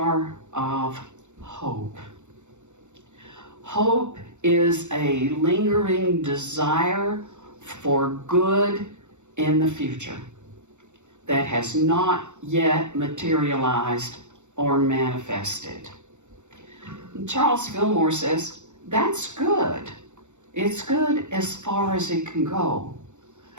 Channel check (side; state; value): left; late; 0.84 ms